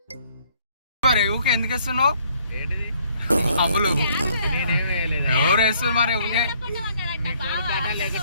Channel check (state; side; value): inverted; both; correlation -0.64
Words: మరి ఊకే ఎందుకు వేస్తున్నావు? అమ్ములు ఎవరు వేస్తున్నారు మరి ఊకే?